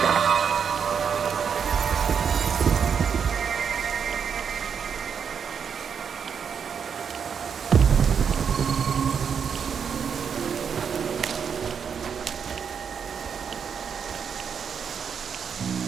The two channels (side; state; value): left; quieter; 7.0 dB